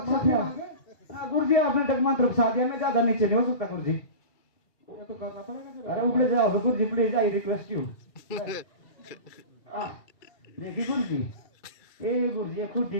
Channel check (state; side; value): late; right; 2.2 ms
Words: अच्छा। हाँ गुरुजी आपने डगमंत्र फंसा दिया, मैं ज्यादा नीचे नहीं हो सकता गुरुजी। ये तो करना पड़ेगा फिर। अरे ऊपर जाओ तो गुरुजी प्लीज आई रिक्वेस्ट यू। ये की गुरुजी, ये गुरुजी ये खुद